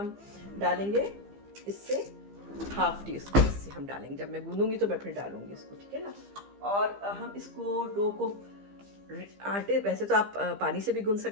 डालेंगे, इससे हाफ टी स्पून इससे हम डालेंगे। जब मैं गूंदूंगी तो मैं फिर डालूंगी इसको, ठीक है ना। और हम इसको डो को आटे, वैसे तो आप पानी से भी गूंद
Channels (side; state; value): left; late; 15 ms